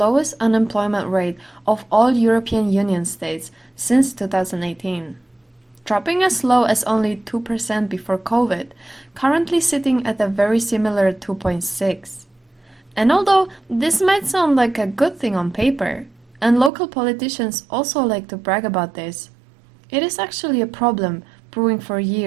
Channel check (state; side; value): drops out; left; at 16.7 s